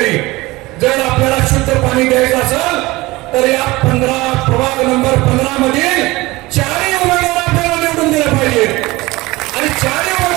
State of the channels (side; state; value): left; quieter; 20.7 dB